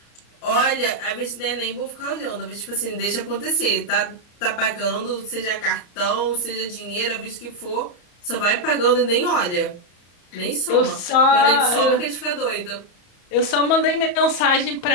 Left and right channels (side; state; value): right; late; 34 ms